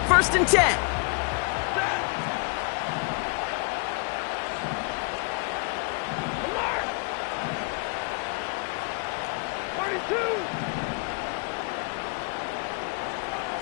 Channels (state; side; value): quieter; right; 36.4 dB